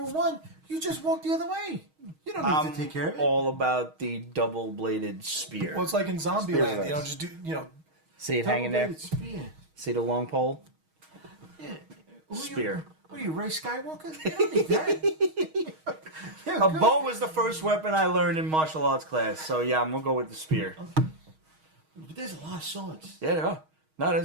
with one, you just walk the other way. You don't need to take care of it. All about the double-bladed spear. Well, it's like in Spears Zombieland. are You know, nice. just do. You know, See it hanging there. Double-bladed spear. See the long pole. Yeah. Who Spear. What are you, Ray Skywalker? You don't need that. Yeah, A good. bow was the first weapon I learned in martial arts class. So yeah, I'm gonna go with the spear. But there's a lot of swords. Yeah, there are. No,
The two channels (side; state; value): left; late; 6.4 ms